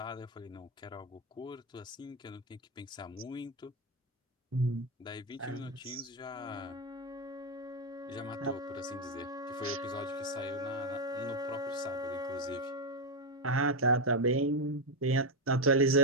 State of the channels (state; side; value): normal; both; correlation 0.06